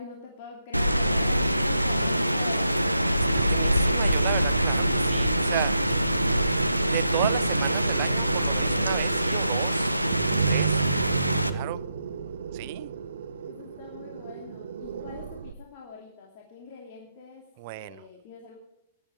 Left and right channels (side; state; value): both; inverted; correlation -0.84